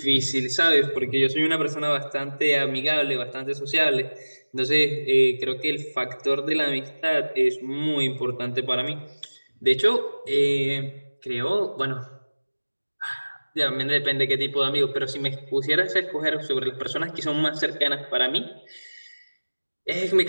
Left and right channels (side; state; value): both; inverted; correlation -1.00